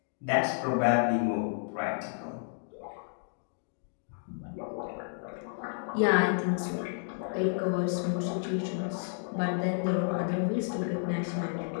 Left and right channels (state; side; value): silent; right; digital silence